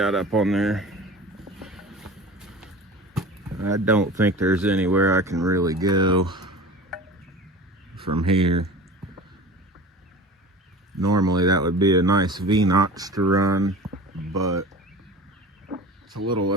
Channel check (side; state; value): both; normal; correlation 0.37